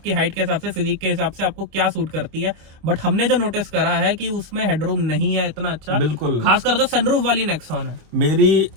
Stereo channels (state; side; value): late; left; 26 ms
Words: हाइट के हिसाब से, फिजिक के हिसाब से आपको क्या सूट करती है। बट हमने जो नोटिस करा है कि उसमें हेडरूम नहीं है इतना अच्छा, बिल्कुल, खासकर जो सनरूफ वाली नेक्सॉन है। मेरी